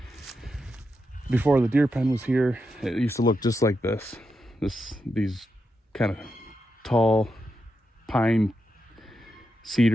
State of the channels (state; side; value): normal; both; correlation 0.86